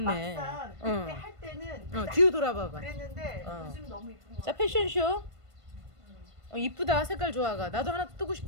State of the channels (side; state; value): left; late; 1.5 ms